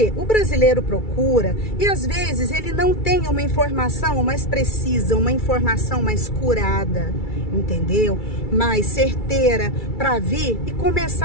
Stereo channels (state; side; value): late; right; 2.3 ms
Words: o brasileiro procura e às vezes ele não tem uma informação mais precisa, uma informação mais curada, entendeu? Mais certeira para vir e